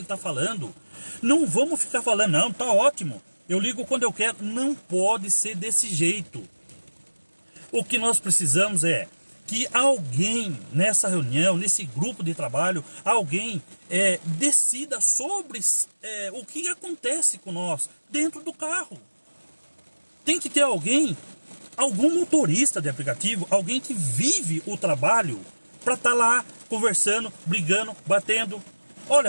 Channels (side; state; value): both; inverted; correlation -1.00